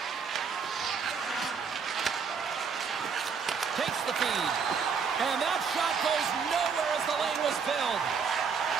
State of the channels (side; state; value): left; quieter; 5.9 dB